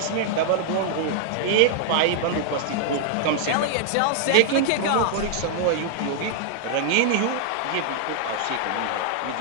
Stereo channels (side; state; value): both; different; correlation 0.00